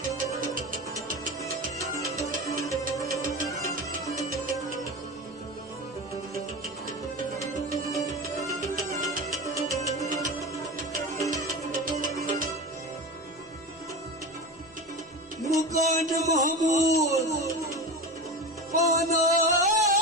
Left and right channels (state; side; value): normal; both; correlation 0.26